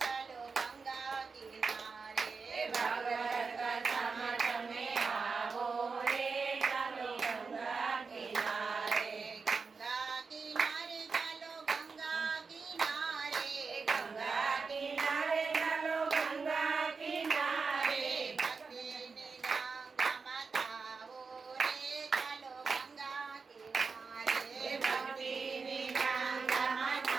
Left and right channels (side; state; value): left; quieter; 4.8 dB